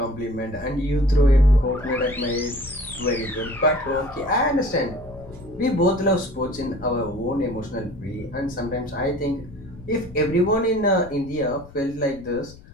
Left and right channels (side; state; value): left; noise; rumble, 19 dB below the sound